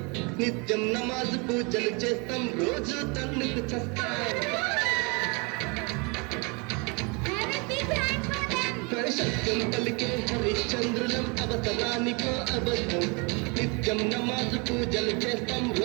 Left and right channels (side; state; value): left; quieter; 30.6 dB